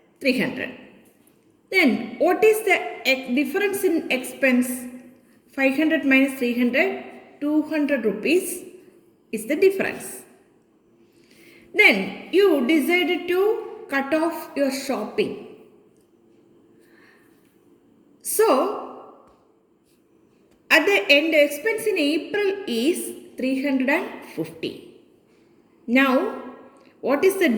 300. Then what is the difference in expense? 500 minus 300, 200 rupees is the difference. Then you decided to cut off your shopping. So at the end, the expense in April is 350. Now, what is the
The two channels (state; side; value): identical; both; correlation 1.00